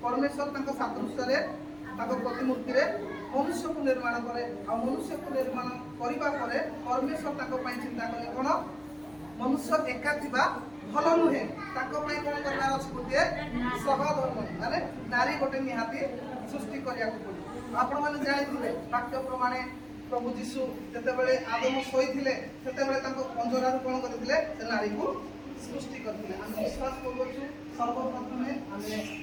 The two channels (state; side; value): noise; right; hum, 27 dB below the sound